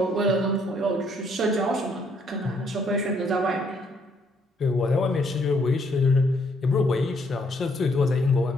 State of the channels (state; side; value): normal; both; correlation 0.69